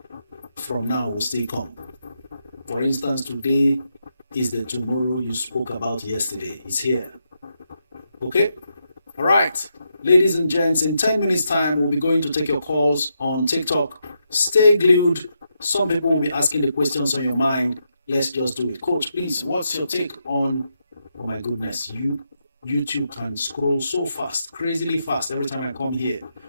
from now will still come. For instance, today is the tomorrow you spoke about yesterday. It's here. Okay? All right. Ladies and gents, in 10 minutes time, we'll be going to take your calls on TikTok. Stay glued. Some people will be asking the questions on your mind. Let's just do it. Coach, please, what's your take on, oh my goodness, YouTube can scroll so fast, crazily fast every time I come here.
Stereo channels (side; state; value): both; inverted; correlation -0.82